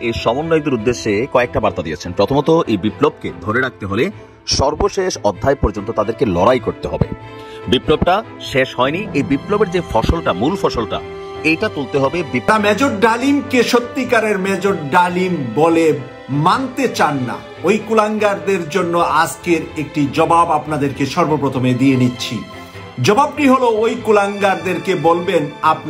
এই সমন্বয়কদের উদ্দেশ্যে কয়েকটা বার্তা দিয়েছেন। প্রথমত, এই বিপ্লবকে ধরে রাখতে হলে সর্বশেষ অধ্যায় পর্যন্ত তাদেরকে লড়াই করতে হবে। বিপ্লবটা শেষ হয়নি, এই বিপ্লবের যে ফসলটা, মূল ফসলটা, এইটা তুলতে হবে। মেজর ডালিমকে সত্যিকারের মেজর ডালিম বলে মানতে চান না ওই কুলাঙ্গারদের জন্য আজকের একটি জবাব আপনাদেরকে সর্বপ্রথমে দিয়ে নিচ্ছি। জবাবটি হলো, ওই কুলাঙ্গারদেরকে বলবেন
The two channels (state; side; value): identical; both; correlation 1.00